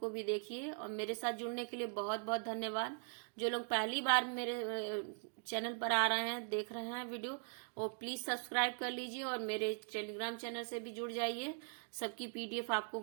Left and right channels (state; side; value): silent; left; 51 dB below the other